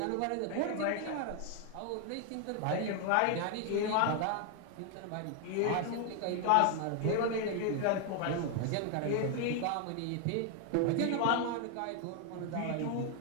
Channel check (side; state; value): both; different; correlation 0.00